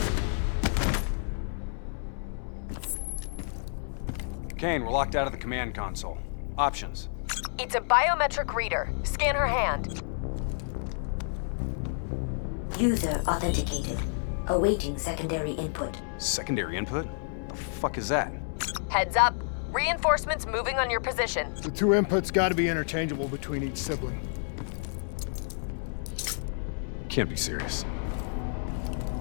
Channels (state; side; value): silent; right; 58 dB below the other